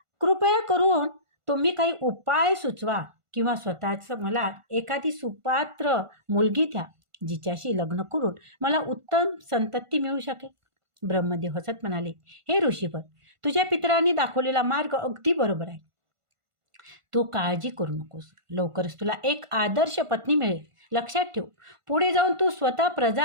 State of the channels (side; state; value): left; late; 1.5 ms